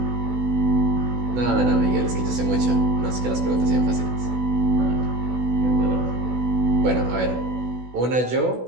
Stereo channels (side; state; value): left; late; 16 ms